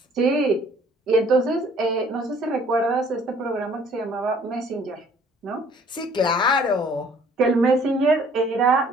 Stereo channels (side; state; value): both; normal; correlation 0.57